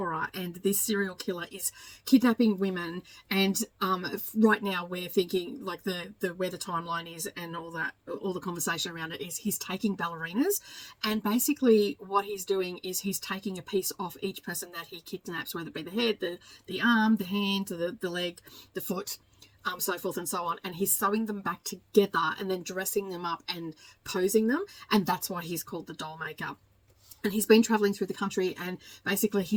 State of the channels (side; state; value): both; identical; correlation 1.00